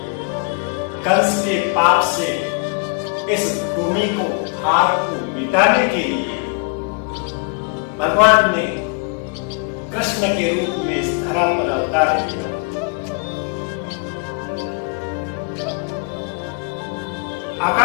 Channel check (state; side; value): quieter; right; 34.0 dB